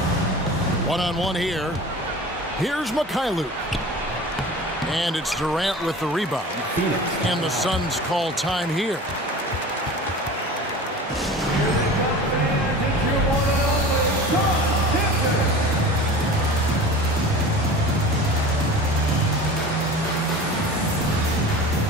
One-on-one here. Here's Mikhailuk. And it's Durant with the rebound. And the Suns call time here.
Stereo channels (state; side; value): normal; both; correlation 0.37